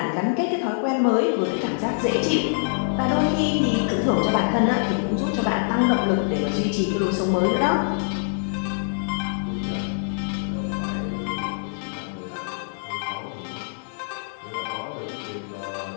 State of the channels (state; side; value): silent; right; digital silence